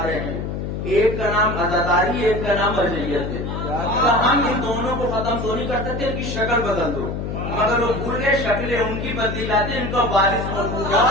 ہیں، ایک کا نام عزاداری، ایک کا نام مرجعیت ہے. ہم ان دونوں کو ختم تو نہیں کر سکتے، ان کی شکل بدل دو. مگر وہ بھول گئے شکلیں ان کی بدلی جاتی ہیں، ان کا وارث موجود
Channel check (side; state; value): left; noise; hum, 4 dB below the sound